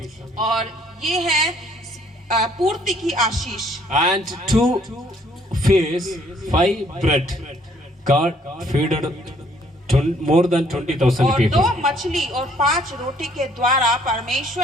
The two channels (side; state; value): both; normal; correlation 0.63